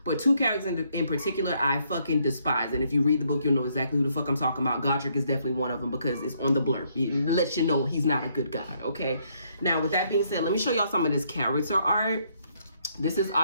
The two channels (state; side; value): inverted; both; correlation -0.71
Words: But 2 characters in particular I fucking despise. And if you read the book, you'll know exactly who the fuck I'm talking about. Godric is definitely one of them because it's on the blurb. It lets you know he's not a good god, okay? Now, with that being said, let me show y'all some of this character art. This is